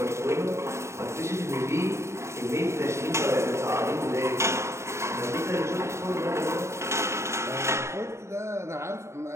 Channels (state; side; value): late; left; 0.13 ms